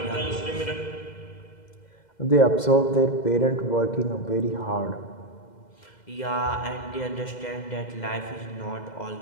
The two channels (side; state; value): right; late; 2.1 ms